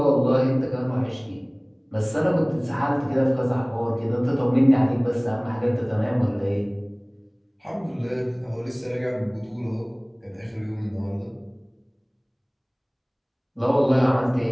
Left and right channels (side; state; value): both; identical; correlation 1.00